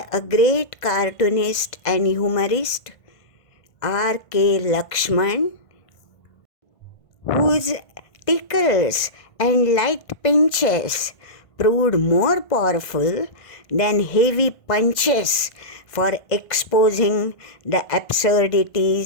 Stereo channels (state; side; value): late; right; 1.5 ms